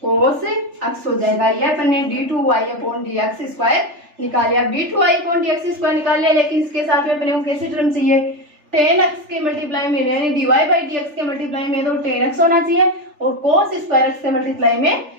कोस एक्स हो जाएगा। ये अपन ने d2y upon D x square निकाल लिया। अब d2y upon D x square निकाल लिया, लेकिन इसके साथ में अपने को कैसे टर्म चाहिए, tan x के मल्टीप्लाई में यानी dy बाई डी एक्स के मल्टीप्लाई में तो tan x होना चाहिए और cos स्क्वायर x के मल्टीप्लाई में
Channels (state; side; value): late; left; 3.4 ms